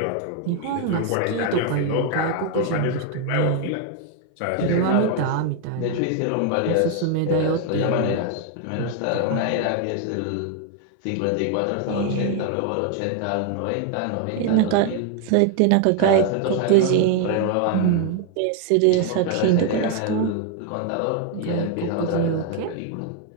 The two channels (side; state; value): both; different; correlation 0.00